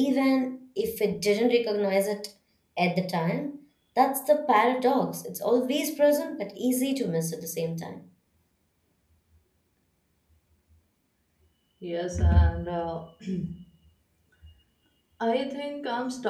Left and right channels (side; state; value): both; identical; correlation 1.00